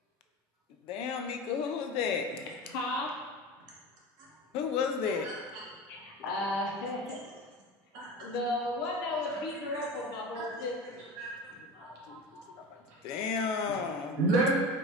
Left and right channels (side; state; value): both; normal; correlation 0.30